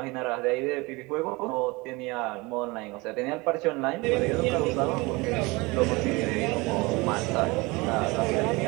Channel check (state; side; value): quieter; left; 24.4 dB